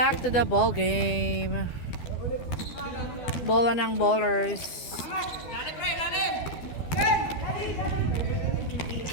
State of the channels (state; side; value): late; right; 12 ms